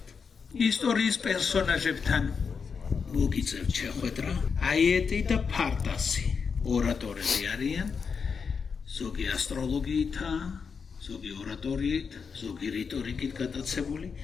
ისტორიის პერსონაჟებთან მოგიწევთ შეხვედრა, აიეტი და ფარტასი. ორატორები არიან, ზოგი ასტროლოგიითაა, ზოგი ორატორიით, ზოგი რიტორიკით გატაცებული,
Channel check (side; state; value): right; quieter; 5.8 dB